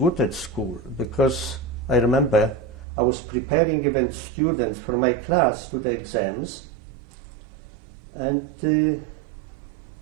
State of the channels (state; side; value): drops out; left; at 2.9 s